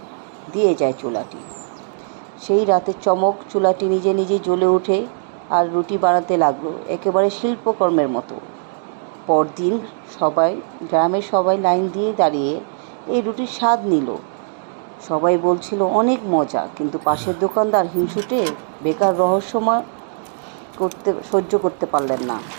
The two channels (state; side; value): silent; left; digital silence